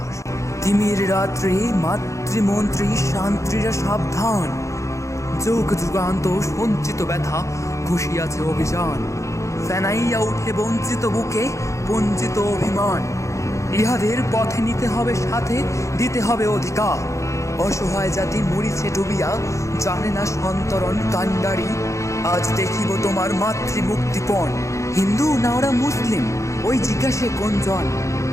তিমির রাত্রি মাতৃমন্ত্রী শান্ত্রীরা সাবধান, যুগ যুগান্ত সঞ্চিত ব্যথা ঘুষিয়াছে অভিযান। ফেনাইয়া উঠে বঞ্চিত বুকে বঞ্চিত অভিমান, ইহাদের পথে নিতে হবে সাথে, দিতে হবে অধিকার। অসহায় জাতি মরিছে ডুবিয়া, জানে না সন্তরণ কান্ডারি। আজ দেখিব তোমার মাতৃমুক্তিপণ, হিন্দু না ওরা মুসলিম, ওই জিজ্ঞাসে কোনজন?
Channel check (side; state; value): right; late; 0.15 ms